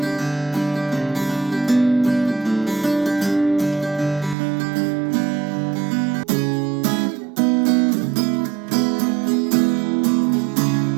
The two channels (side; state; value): left; drops out; at 4.4 s